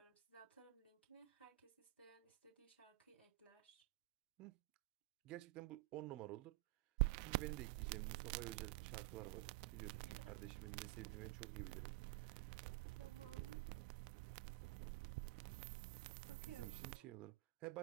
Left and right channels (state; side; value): quieter; left; 20.8 dB